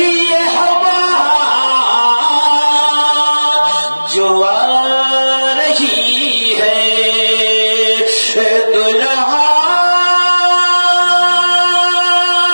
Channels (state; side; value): inverted; both; correlation -1.00